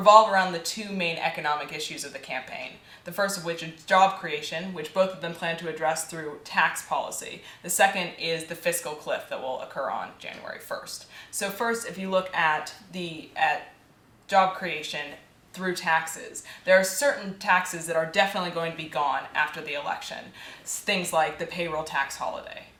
around the two main economic issues of the campaign. The first of which is job creation, which both of them plan to address through tax policy. The second is the fiscal cliff that will occur on January 1st. So first, if you look at job creation through taxes, there are certain taxes that are definitely going to be gone after the election. Things like the payroll tax holiday.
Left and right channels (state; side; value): identical; both; correlation 1.00